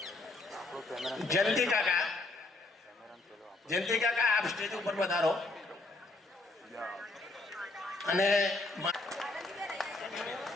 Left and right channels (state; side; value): quieter; right; 3.1 dB